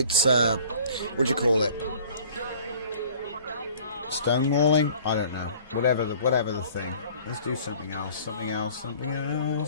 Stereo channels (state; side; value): inverted; both; correlation -0.50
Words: what do you call it? Stonewalling? I don't know. Whatever the thing. Let's do something else. I'm